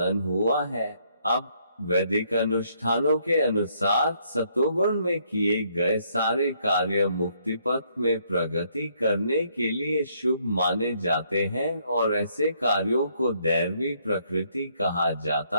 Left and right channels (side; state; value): both; inverted; correlation -0.69